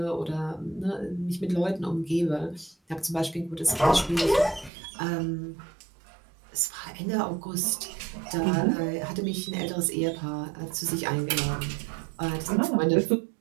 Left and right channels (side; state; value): left; drops out; at 4.7 s